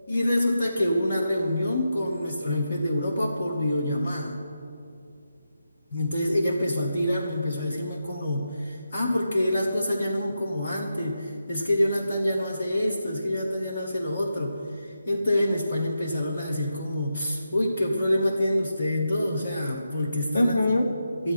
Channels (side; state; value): both; inverted; correlation -0.87